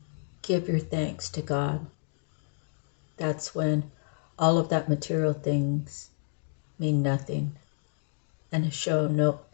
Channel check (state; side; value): silent; right; digital silence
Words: give your thanks to God, that's when all of that material things mean nothing and